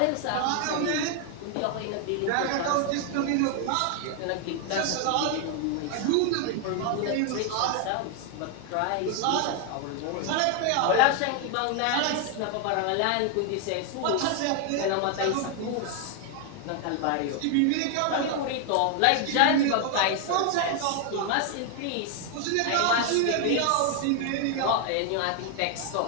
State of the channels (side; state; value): both; different; correlation 0.00